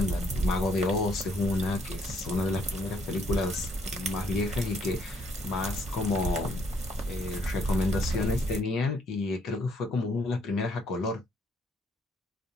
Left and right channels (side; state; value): both; normal; correlation 0.68